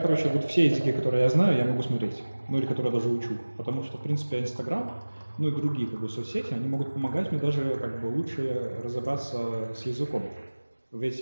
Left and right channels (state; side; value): inverted; both; correlation -1.00